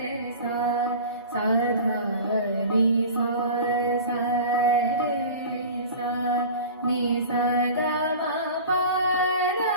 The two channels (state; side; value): inverted; both; correlation -0.37